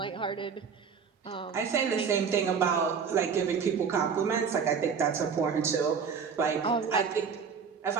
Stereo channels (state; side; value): quieter; left; 6.3 dB